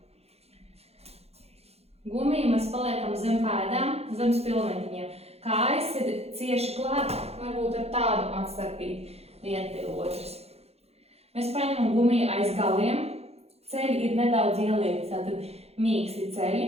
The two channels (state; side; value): late; left; 0.30 ms